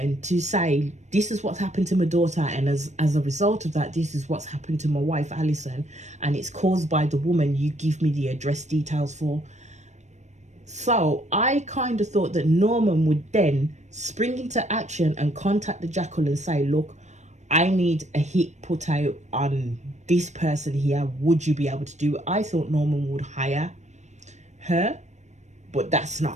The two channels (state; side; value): late; left; 0.34 ms